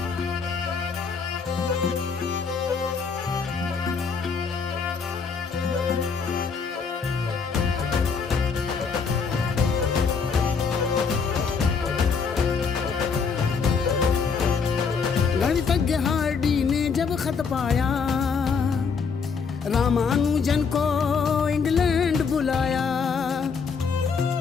गणितज्ञ हार्डी ने जब खत पाया, रामानुजन को इंग्लैंड बुलाया।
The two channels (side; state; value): right; quieter; 5.5 dB